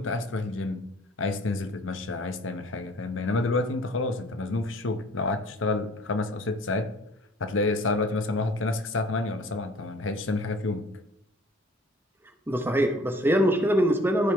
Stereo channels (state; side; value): normal; both; correlation 0.52